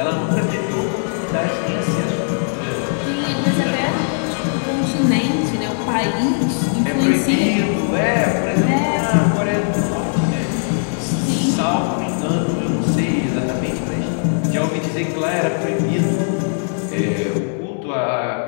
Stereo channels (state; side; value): silent; right; digital silence